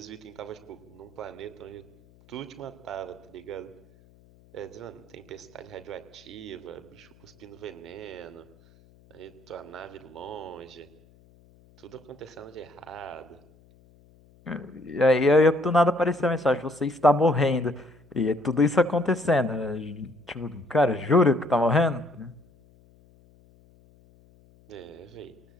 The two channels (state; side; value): noise; left; hum, 28 dB below the sound